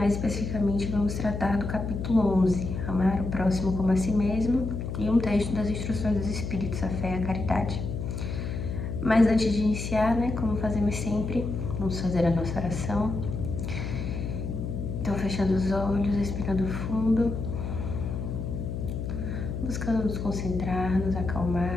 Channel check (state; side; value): noise; left; hum, 4 dB below the sound